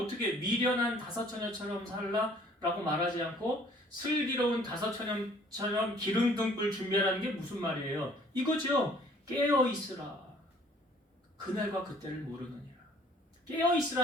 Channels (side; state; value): both; normal; correlation 0.57